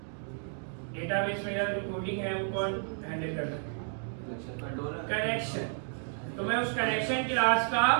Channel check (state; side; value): silent; left; 57 dB below the other